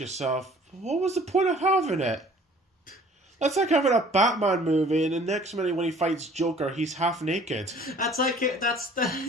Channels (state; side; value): normal; both; correlation 0.53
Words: what was the point of having it? That's like having a Batman movie, and the next minute when he fights Joker, he's half naked. That's like, what the